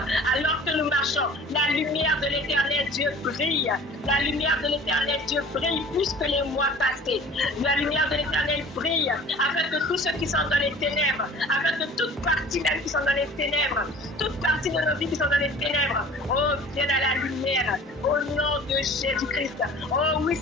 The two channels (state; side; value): normal; both; correlation 0.45